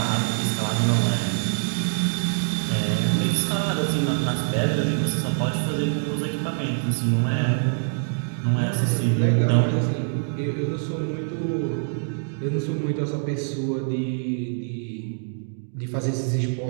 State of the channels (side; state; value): left; silent; digital silence